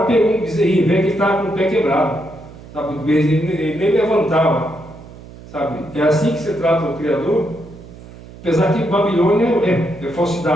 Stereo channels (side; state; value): right; noise; hum, 18 dB below the sound